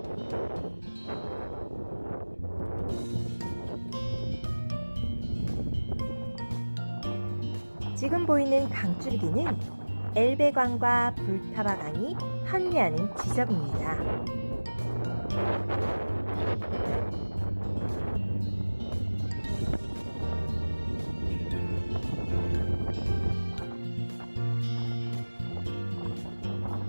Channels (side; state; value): both; inverted; correlation -1.00